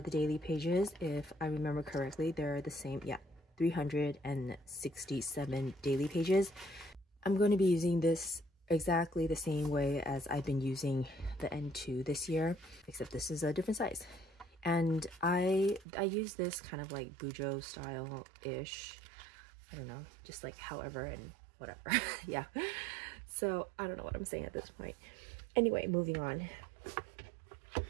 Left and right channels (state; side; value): drops out; left; at 15.9 s